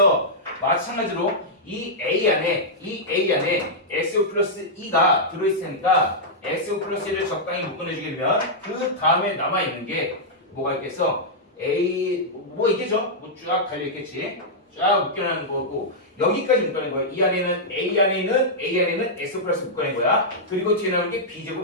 마찬가지로 이 A 안에 X 플러스 2가 들어있으니까 X 플러스 1을 적당히 묶어내주게 되면 그 다음에 남아있는 게 뭐가 있겠어? 뭐 있겠죠? 뭐 쫙 달려있겠지? 쫙 묶여내는 거고 여기까지 묶어낸 거야. 이 안에는 A 안에는 X 플러스 묶어낸 거야. 그리고 뒤에 나오는 게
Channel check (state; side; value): normal; both; correlation -0.08